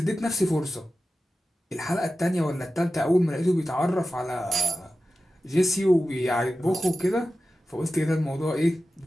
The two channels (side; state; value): both; normal; correlation 0.93